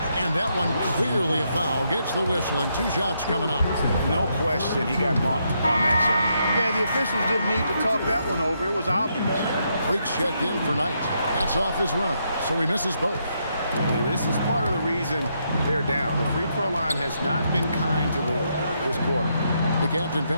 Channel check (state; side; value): inverted; both; correlation -0.78